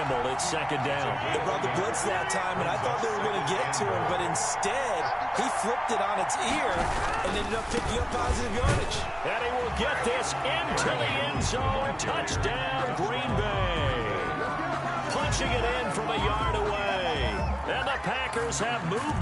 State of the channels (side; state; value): both; identical; correlation 1.00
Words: It's second down. They brought the blitz that time, and I thought they were going to get to him, but instead, he flipped it on its ear and ended up picking up positive yardage. And he will get this into the end zone. Touchdown, Green Bay. Punching it in from a yard away. And the Packers have